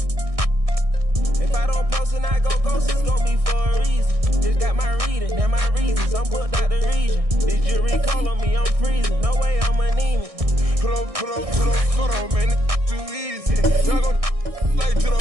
If I don't post and I go ghost, it's gon' be for a reason. Just got my reading and my reasons. I'm booked out the region. This jury call on me, I'm freezing. No way I'm anemic. Put on, man, it's too easy. Y'all gon' like to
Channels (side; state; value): left; late; 1.6 ms